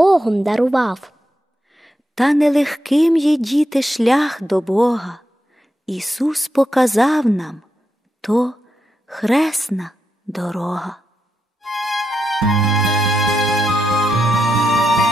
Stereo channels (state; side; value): normal; both; correlation 0.85